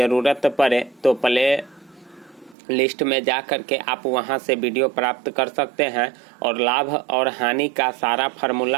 पड़े तो प्ले लिस्ट में जा कर के आप वहां से वीडियो प्राप्त कर सकते हैं। और लाभ और हानि का सारा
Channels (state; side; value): drops out; left; at 2.6 s